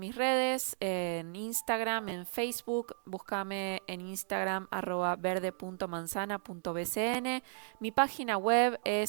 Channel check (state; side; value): silent; left; digital silence